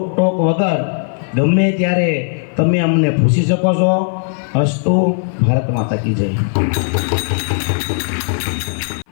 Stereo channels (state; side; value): silent; right; 56 dB below the other